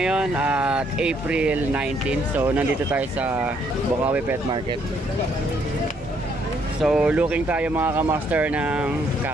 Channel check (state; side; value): normal; both; correlation 0.70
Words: at April 19. So nandito tayo sa Bukawi Pet Market. So looking tayo mga kamaster ng